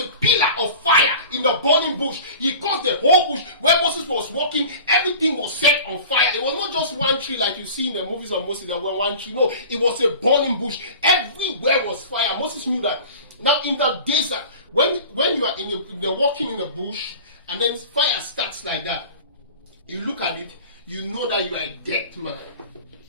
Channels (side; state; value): both; inverted; correlation -0.39